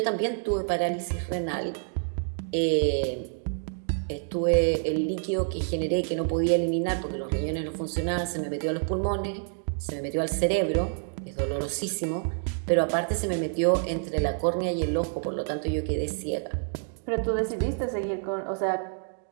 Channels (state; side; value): silent; left; 59 dB below the other